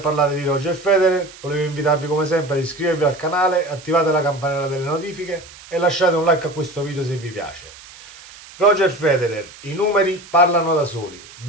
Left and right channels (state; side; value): noise; right; hiss, 19 dB below the sound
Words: di Roger Federer, volevo invitarvi come sempre ad iscrivervi al canale, attivate la campanella delle notifiche e lasciate un like a questo video se vi piace. Roger Federer, i numeri parlano da soli: